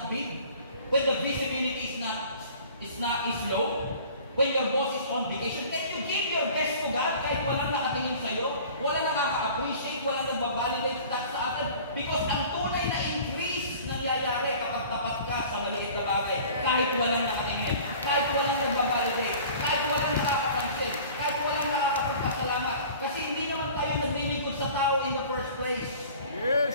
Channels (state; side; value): inverted; both; correlation -0.45